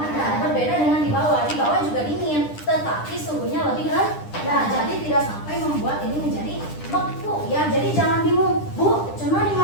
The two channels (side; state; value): right; late; 9.9 ms